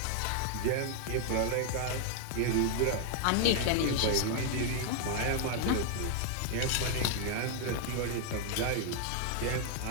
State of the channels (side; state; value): both; different; correlation 0.00